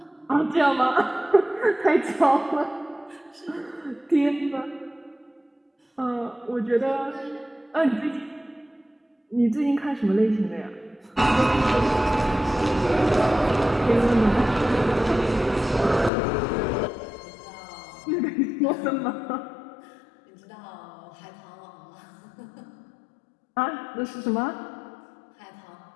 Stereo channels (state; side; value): drops out; right; at 16.1 s